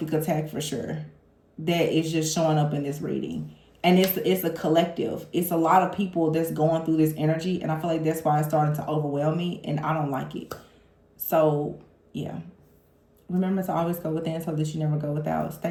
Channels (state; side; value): identical; both; correlation 1.00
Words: attack for sure that is just showing up in this reading. And it's a collective. It's a lot of people that's going through this energy, and I feel like that's why it's starting to overwhelm me, and I don't like it. So, yeah. Remember to always go within so that you never go without.